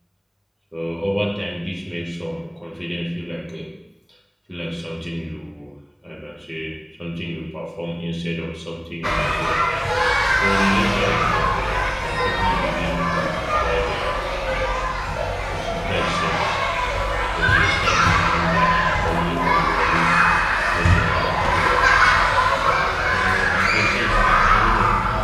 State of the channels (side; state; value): both; identical; correlation 1.00